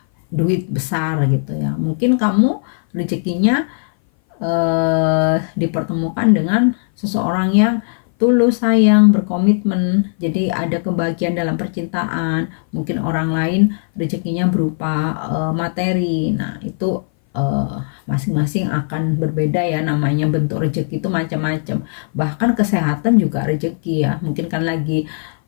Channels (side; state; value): right; silent; 58 dB below the other